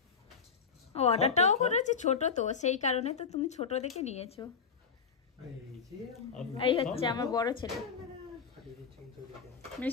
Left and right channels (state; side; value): quieter; right; 5.9 dB